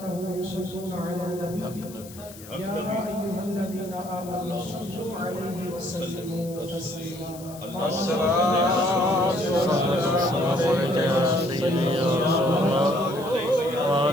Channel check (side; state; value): left; noise; hiss, 18 dB below the sound